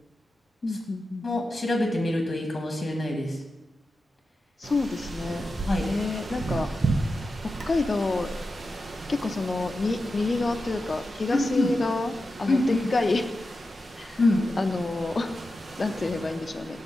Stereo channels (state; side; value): normal; both; correlation 0.91